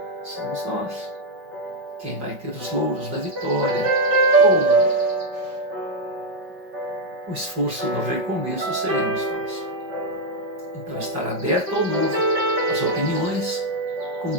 somos nós. Quem vai ter os louros da vitória ou o esforço do recomeço seremos nós. Então, estar aberto ao novo, às opiniões, como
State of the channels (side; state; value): left; late; 5.4 ms